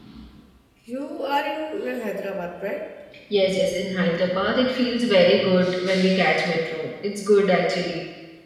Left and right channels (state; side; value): identical; both; correlation 1.00